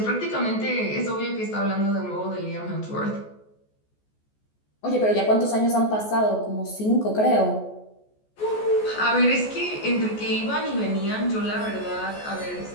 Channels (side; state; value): right; late; 14 ms